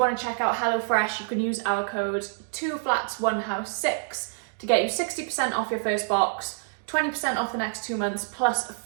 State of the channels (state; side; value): silent; left; digital silence